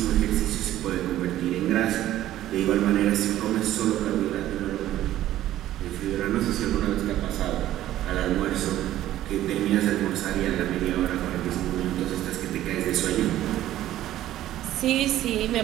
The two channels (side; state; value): left; quieter; 13.5 dB